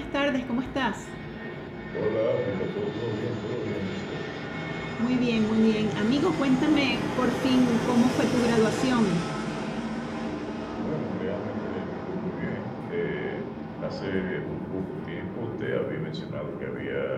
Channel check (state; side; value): identical; both; correlation 1.00